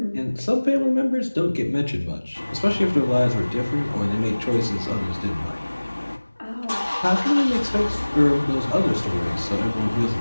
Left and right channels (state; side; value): inverted; both; correlation -1.00